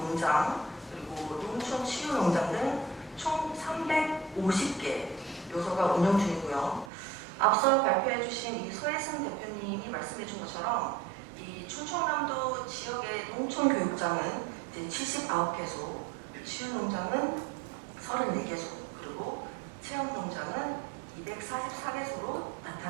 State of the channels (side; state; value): left; drops out; at 6.9 s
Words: 그리고 농촌치유농장 등 총 350개 요소가 운영 중이고요. 앞서 발표해 주신 이 소혜승 대표님이 말씀해 준 것처럼 이 충청남도 지역의 농촌교육장은 이제 79개소, 치유농장은 34개소, 그리고 체험농장은 244개소로